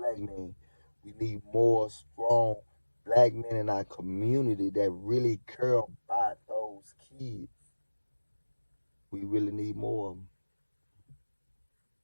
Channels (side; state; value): both; inverted; correlation -1.00